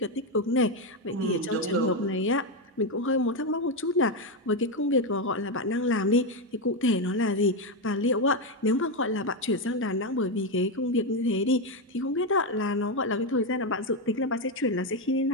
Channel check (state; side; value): normal; both; correlation 0.08